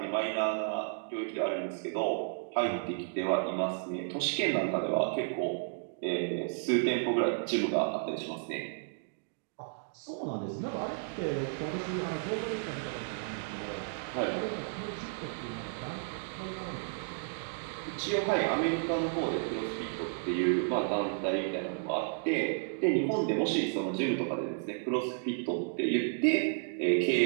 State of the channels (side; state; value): left; silent; digital silence